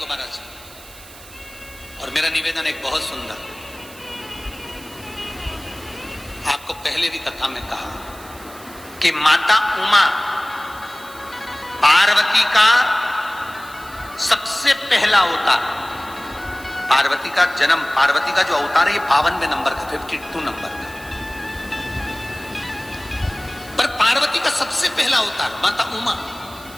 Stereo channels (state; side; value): noise; right; hiss, 19 dB below the sound